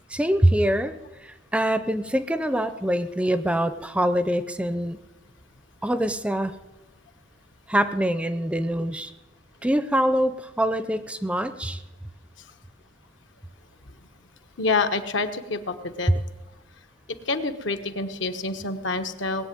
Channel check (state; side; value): normal; both; correlation 0.72